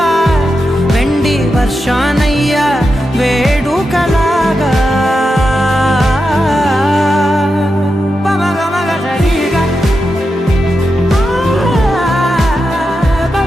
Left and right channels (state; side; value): normal; both; correlation 0.88